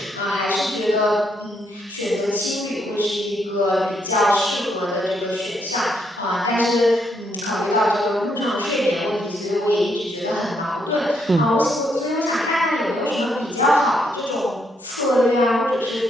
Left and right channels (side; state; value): both; normal; correlation 0.75